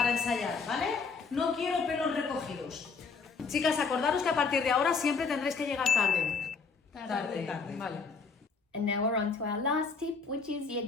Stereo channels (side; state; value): right; quieter; 5.0 dB